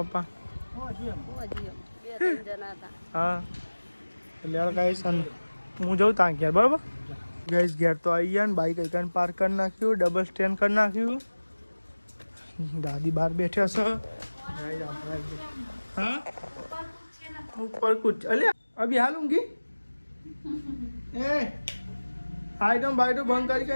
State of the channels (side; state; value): both; inverted; correlation -1.00